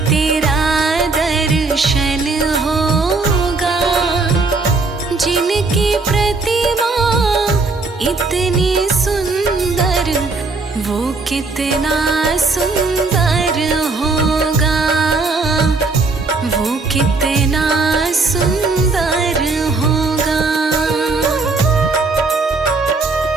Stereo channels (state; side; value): quieter; left; 3.8 dB